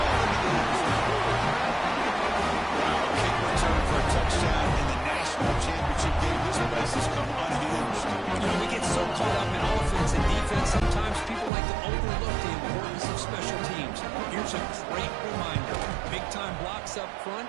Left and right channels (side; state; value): left; drops out; at 11.5 s